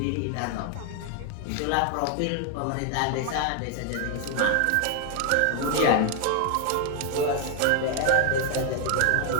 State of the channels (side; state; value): both; different; correlation 0.01